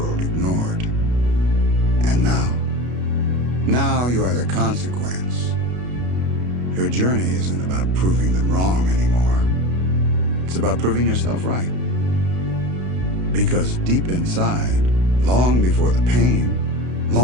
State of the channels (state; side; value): late; left; 32 ms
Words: ignored. And now you are the consequence. Your journey isn't about proving them wrong anymore. It's about proving yourself right. Because deep inside, long before the pain,